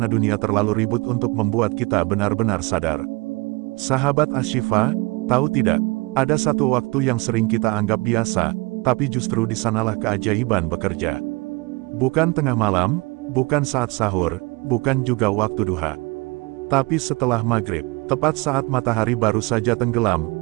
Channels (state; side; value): quieter; left; 26.0 dB